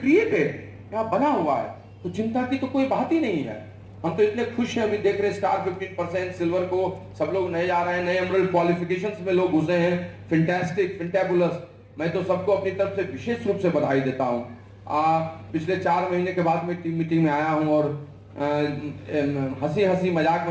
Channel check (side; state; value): both; identical; correlation 1.00